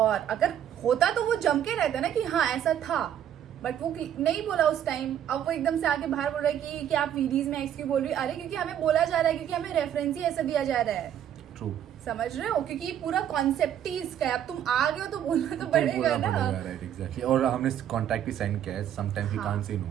अगर होता तो वो जम के रहता ना कि हाँ ऐसा था, बट वो नहीं बोला उस टाइम। अब वो एकदम से आके बाहर बोल रहा है कि आप वीडियोज में एक्स क्यों बोल रही हो। अरे क्योंकि हमें बोला जा रहा है, क्योंकि हमें रेफरेंस ही ऐसा दिया जा रहा है। ट्रू, समझ रहे हो, क्योंकि पूरा कॉन्सेप्ट ही इसका है। अब तुम आ गए हो तो बोलना तो पड़ेगा ना। Right, exactly. और हमने कॉन्ट्रैक्ट भी साइन किया है, sometimes we can't say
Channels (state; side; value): quieter; left; 10.2 dB